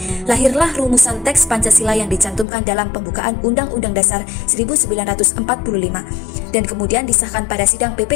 lahirlah rumusan teks Pancasila yang dicantumkan dalam pembukaan Undang-Undang Dasar 1945 dan kemudian disahkan pada sidang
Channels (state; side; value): drops out; right; at 2.5 s